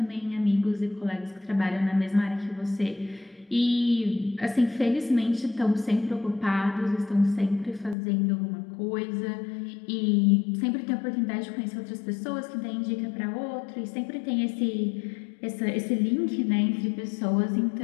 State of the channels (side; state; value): right; drops out; at 8.0 s